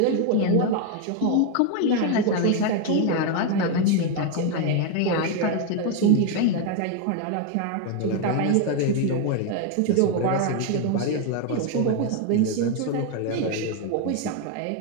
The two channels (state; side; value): different; both; correlation 0.01